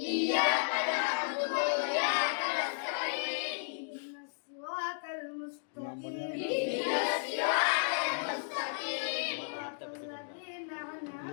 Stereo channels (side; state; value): right; silent; digital silence